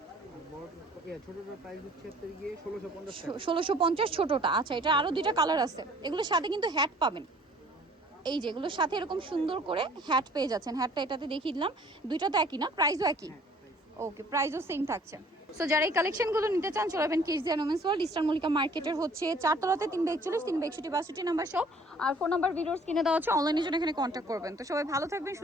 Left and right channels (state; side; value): normal; both; correlation 0.55